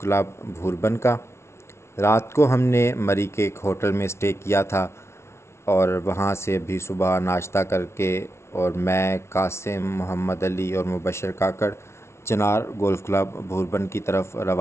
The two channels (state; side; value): late; right; 0.13 ms